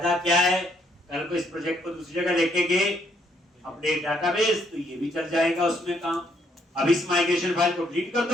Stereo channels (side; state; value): both; normal; correlation 0.71